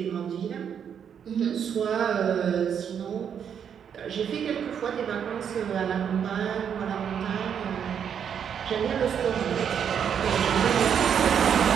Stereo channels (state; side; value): quieter; left; 8.0 dB